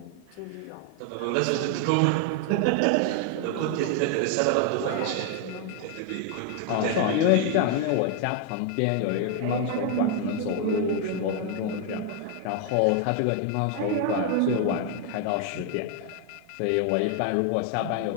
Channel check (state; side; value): different; both; correlation 0.00